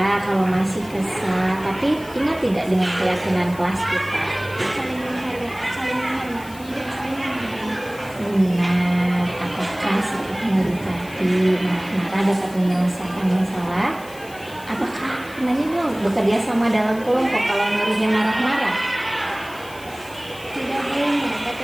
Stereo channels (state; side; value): noise; left; hiss, 20 dB below the sound